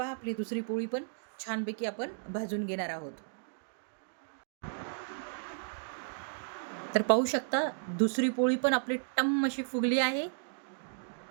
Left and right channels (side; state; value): left; silent; digital silence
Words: आपली दुसरी पोळी पण छानपैकी आपण भाजून घेणार आहोत. तर पाहू शकता दुसरी पोळी पण आपली टम्म अशी फुगली आहे.